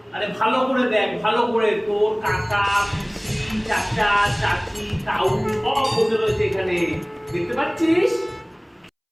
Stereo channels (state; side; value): identical; both; correlation 1.00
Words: আরে ভালো করে দেখ, ভালো করে। তোর কাকা পিসি চাচা চাচি তাউ সব বসে রয়েছে এখানে, দেখতে পাচ্ছিস?